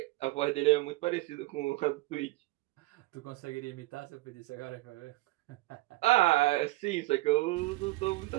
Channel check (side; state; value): left; quieter; 19.8 dB